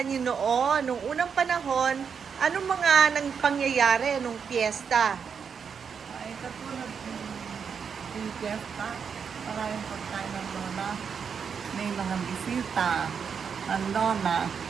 niyo noon, nung unang panahon, anong mga nang pangyayari nung piyesta? Ay, katulad yung fiesta, maraming pagkain ng lola. May mga bisita, ang lola,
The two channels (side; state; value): left; quieter; 6.6 dB